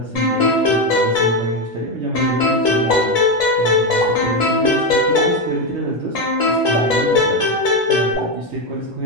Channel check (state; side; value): normal; both; correlation 0.10